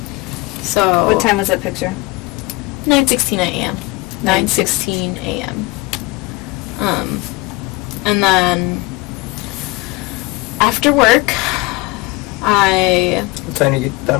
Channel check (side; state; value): right; quieter; 23.1 dB